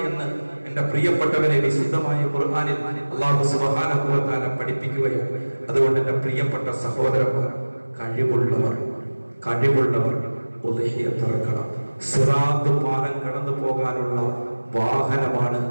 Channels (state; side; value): inverted; both; correlation -1.00